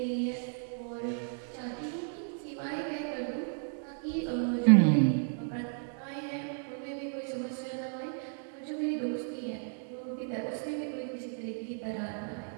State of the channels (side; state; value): left; silent; 55 dB below the other